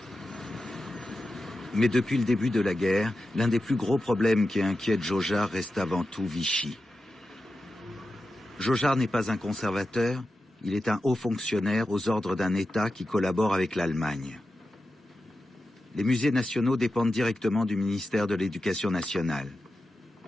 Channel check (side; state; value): both; normal; correlation 0.91